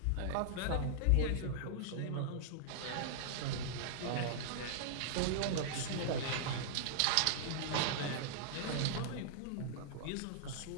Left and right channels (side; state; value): both; different; correlation -0.01